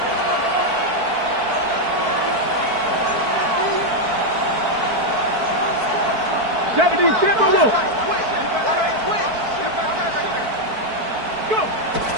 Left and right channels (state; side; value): late; left; 4.5 ms